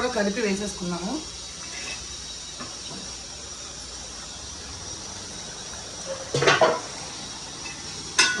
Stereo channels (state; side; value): noise; left; hum, 22 dB below the sound